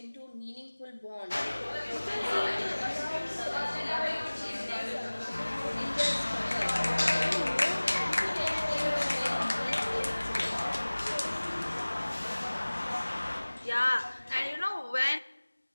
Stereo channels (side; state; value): both; inverted; correlation -1.00